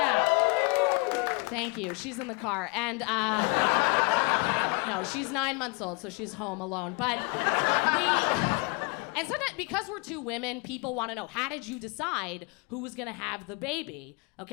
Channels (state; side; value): quieter; right; 28.8 dB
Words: Thank you. She's in the car. And no, she's 9 months old, so she's home alone. But and sometimes, because we're two women, people want to know, how did you decide who was going to have the baby?